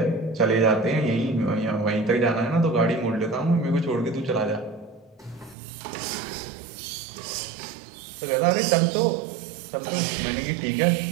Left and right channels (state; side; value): drops out; left; at 5.6 s